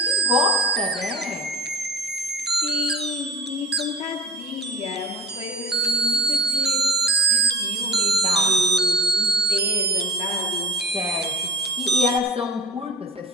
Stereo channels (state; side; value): normal; both; correlation 0.40